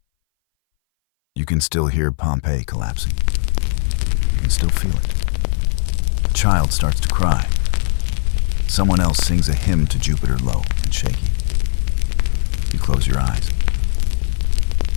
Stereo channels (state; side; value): silent; right; 61 dB below the other